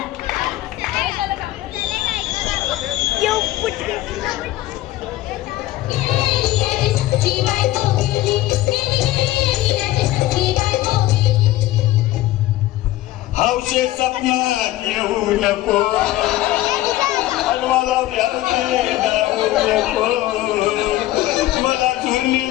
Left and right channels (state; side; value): quieter; right; 15.9 dB